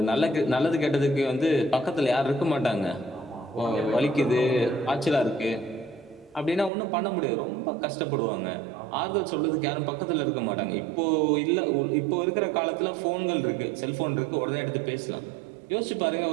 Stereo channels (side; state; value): left; drops out; at 6.7 s